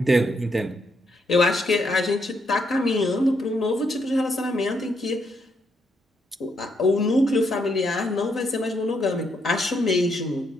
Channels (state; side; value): normal; both; correlation 0.76